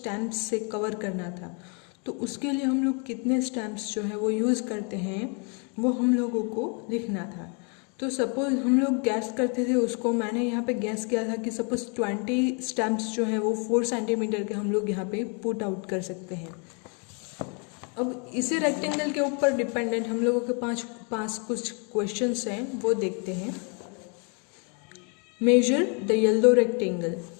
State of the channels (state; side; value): quieter; right; 37.1 dB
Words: से कवर करना था। तो उसके लिए हम लोग कितने स्टैम्प्स जो है वो यूज़ करते हैं वो हम लोगों को लिखना था। तो सपोज हम लोग गैस करते थे उसको, मैंने यहाँ पे गैस किया था कि सपोज 20 स्टैम्प्स जो है वो 4 सेंटीमीटर के हम लोग यहाँ पे पुट आउट कर सकते हैं। अब इसी रेक्टेंगल के ऊपर डिपेंडेंट हम लोगों के पास कुछ क्वेश्चंस हैं, वो देखते हैं। Measure the yellow rectangle.